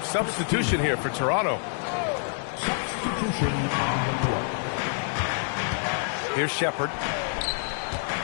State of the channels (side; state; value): right; silent; digital silence